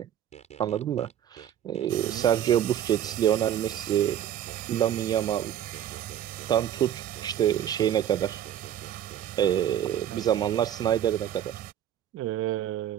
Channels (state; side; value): quieter; left; 10.7 dB